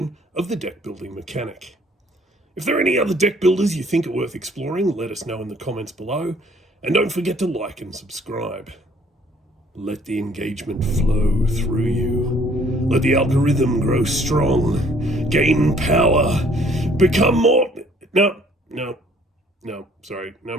of the deck-building mechanic. If there are any other deck builders you think are worth exploring, let us know in the comments below, and don't forget to like and subscribe. Let the engagement flow through you. Let the algorithm grow strong, gain power, become more... No, sorry, no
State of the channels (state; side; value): normal; both; correlation 0.60